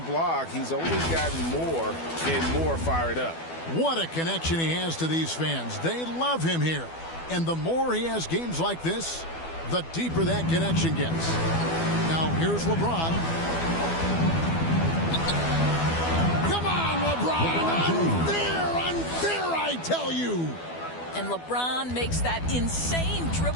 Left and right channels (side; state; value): right; late; 12 ms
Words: he's only gotten more and more fired up. What a connection he has to these fans. They love him here. And the more he has games like this, the deeper that connection gets. Now, here's LeBron. Come on, LeBron! Unfair, I tell you! And LeBron makes that insane